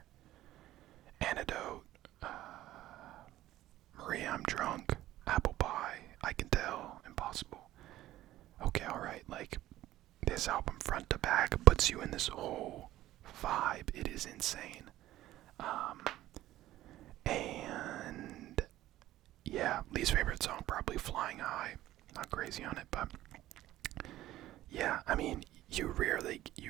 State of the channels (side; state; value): left; quieter; 14.7 dB